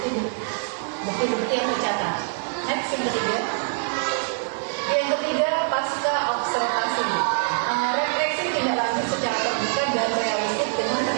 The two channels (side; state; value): left; silent; 62 dB below the other